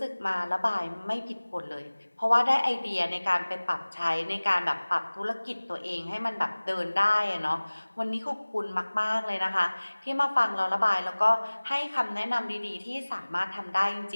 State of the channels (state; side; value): inverted; both; correlation -1.00